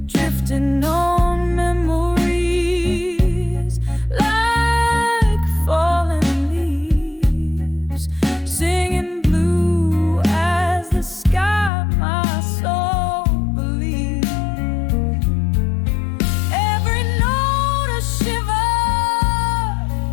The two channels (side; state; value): right; drops out; at 11.7 s